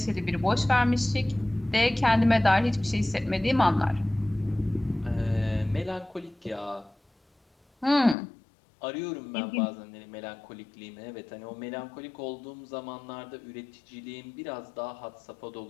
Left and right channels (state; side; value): drops out; right; at 8.2 s